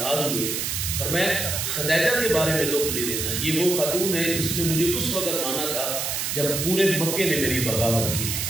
ہوئے، پر میں خدیجہ کے بارے میں دکھ نہیں دینا، یہ وہ خاتون ہے جس نے مجھے اس وقت مانا تھا جب پورے مکے نے میری بغاوت کی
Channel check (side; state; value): right; noise; hiss, 1 dB below the sound